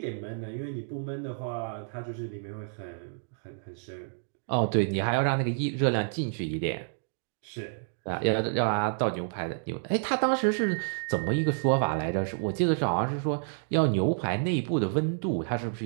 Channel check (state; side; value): silent; left; digital silence